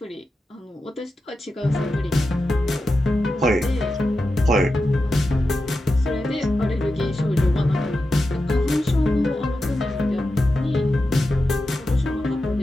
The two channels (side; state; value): both; normal; correlation 0.90